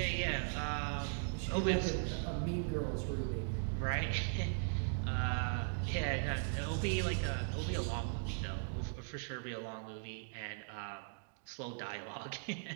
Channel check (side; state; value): left; silent; digital silence